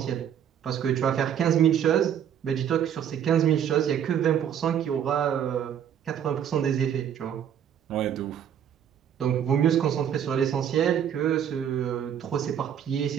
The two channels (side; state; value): left; quieter; 9.2 dB